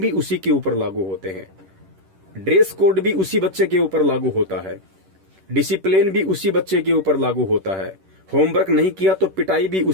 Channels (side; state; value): left; late; 11 ms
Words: उसी के ऊपर लागू होते हैं, ड्रेस कोड भी उसी बच्चे के ऊपर लागू होता है, डिसिप्लिन भी उसी बच्चे के ऊपर लागू होता है, होमवर्क नहीं किया तो पिटाई भी